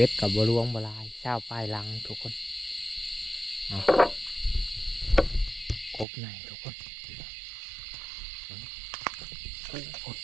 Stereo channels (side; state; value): left; drops out; at 6.1 s